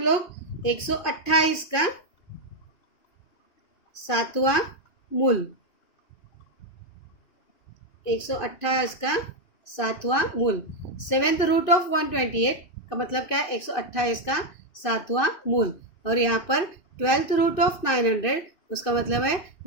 लोग 128 का 7वां मूल, 128 का 7वां मूल। सेवेंथ रूट ऑफ 128 का मतलब क्या है 128 का 7वां मूल। और यहाँ पर 12th रूट ऑफ 900 उसका मतलब है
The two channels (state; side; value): late; right; 2.9 ms